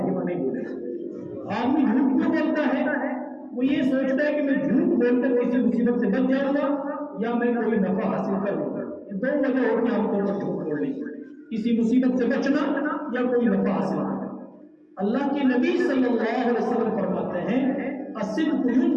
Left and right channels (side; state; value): both; identical; correlation 1.00